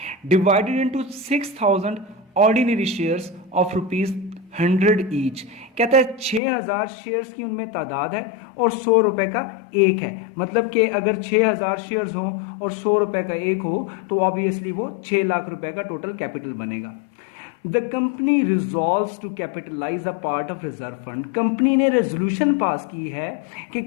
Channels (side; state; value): right; drops out; at 6.4 s